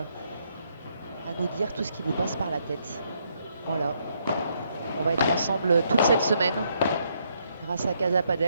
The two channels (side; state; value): both; inverted; correlation -0.73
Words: à nous dire tout ce qui vous passe par la tête. Voilà, on va être ensemble toute cette semaine grâce à Casa